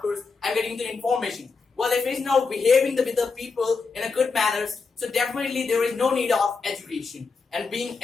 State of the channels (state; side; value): quieter; right; 4.6 dB